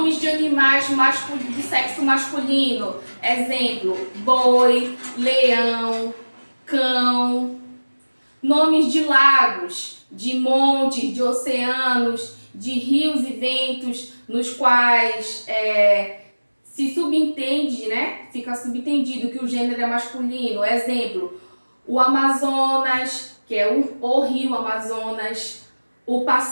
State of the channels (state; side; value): inverted; both; correlation -1.00